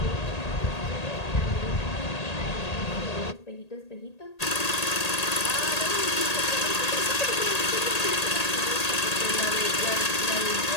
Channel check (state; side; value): late; right; 1.8 ms